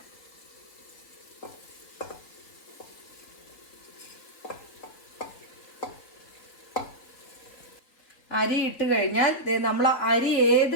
അരി ഇട്ട് കഴിഞ്ഞാൽ നമ്മൾ അരി ഏത്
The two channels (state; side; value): late; right; 4.1 ms